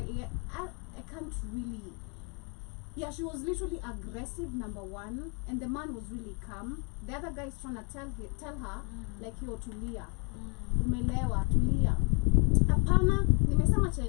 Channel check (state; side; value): quieter; right; 31.0 dB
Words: Yeah, I can't really. Yeah, she was literally aggressive, number one, and the man was really calm. The other guy is trying to tell her, like, yo, tulia. Umelewa, tulia. Apana, nimesema cha